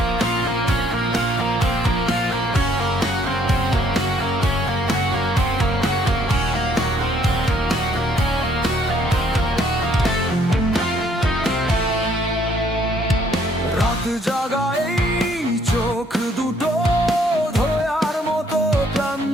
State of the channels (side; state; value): both; normal; correlation 0.65